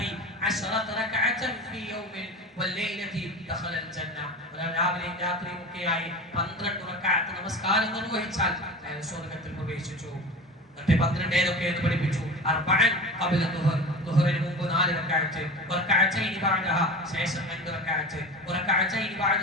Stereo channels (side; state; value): both; normal; correlation 0.32